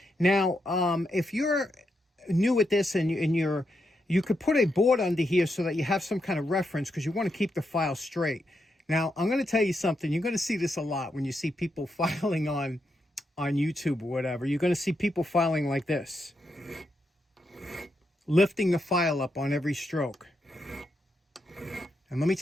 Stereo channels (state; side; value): normal; both; correlation 0.83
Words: Now, if you're new at this and you could put a board under here so that you have some kind of reference, because you want to keep the file straight. Now, I'm going to tell you something. You're going to see this a lot when you see people filing on YouTube or whatever. You're going to see people filing like this, lifting the file up on every stroke. And let me